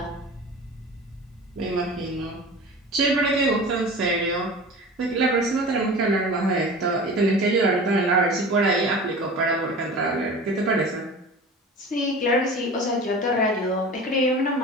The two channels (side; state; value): both; normal; correlation 0.36